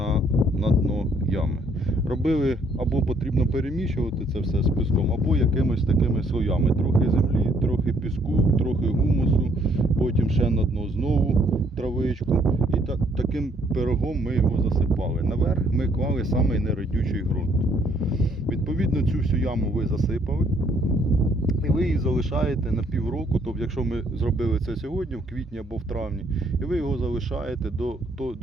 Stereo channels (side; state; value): both; normal; correlation 0.66